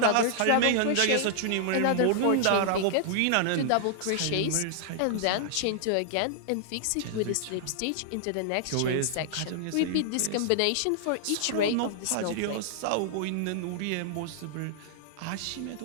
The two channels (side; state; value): both; different; correlation -0.01